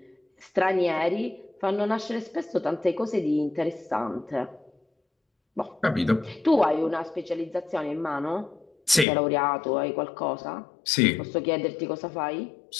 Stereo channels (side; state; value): right; drops out; at 9.1 s